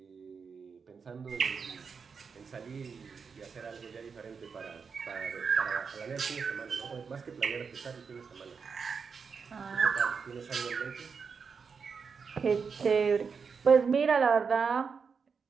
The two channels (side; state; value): left; quieter; 5.7 dB